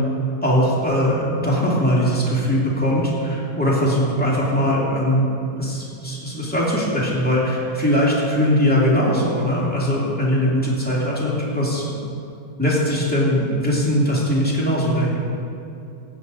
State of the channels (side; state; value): both; normal; correlation 0.09